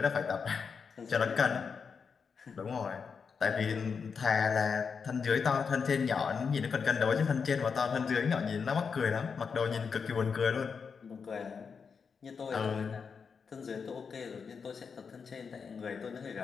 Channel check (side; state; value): right; quieter; 5.8 dB